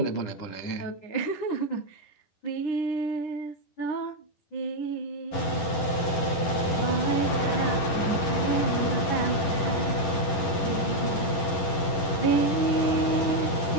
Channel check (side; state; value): right; late; 11 ms